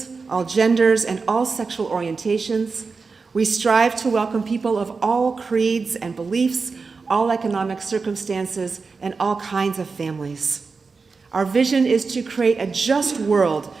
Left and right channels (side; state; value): left; quieter; 4.6 dB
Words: all genders, and all sexual orientations. We strive to welcome people of all creeds and beliefs, all economic circumstances, and all kinds of families. Our vision is to create a just world